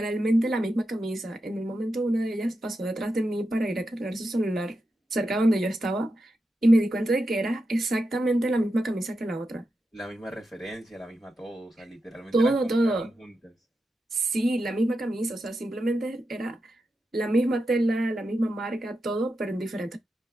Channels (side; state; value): both; normal; correlation 0.88